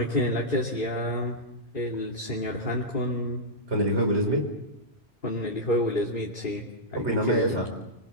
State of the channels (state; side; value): normal; both; correlation -0.10